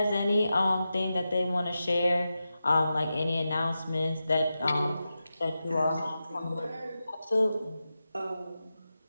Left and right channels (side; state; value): both; inverted; correlation -0.91